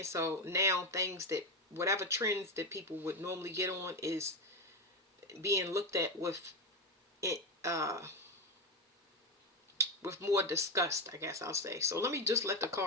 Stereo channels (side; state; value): both; normal; correlation 0.12